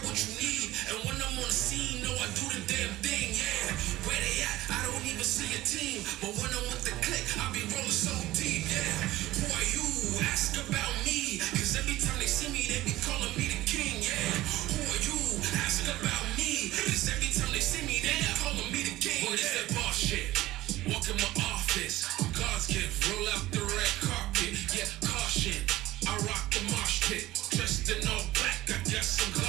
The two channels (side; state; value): left; quieter; 16.8 dB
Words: what you need. And when I'm on the scene, no, I do the damn thing, yeah. Where they at? I don't even see a team. But when I'm with the click, I be rolling so deep, yeah. Who are you? Ask about me. Cause every time they see me, they be calling me the king, yeah. Who are you? Ask about me. Cause every time they see me, they be calling me the king. What is that boss shit? Walk in my office. God's gift. Roll out the red carpet. Yeah, caution. I rock the mosh pit. Dressed in all black. I guess I'm